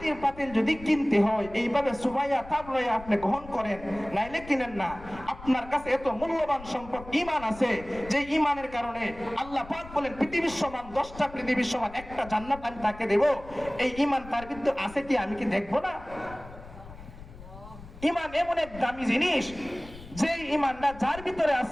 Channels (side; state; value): left; noise; rumble, 17 dB below the sound